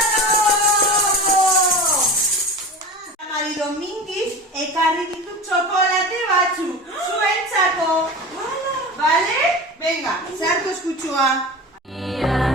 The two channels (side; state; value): both; normal; correlation 0.31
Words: Mari Domingiz ekarri ditut txokolate batzu, zuentzako. Bale? Venga, sartu eskutsua.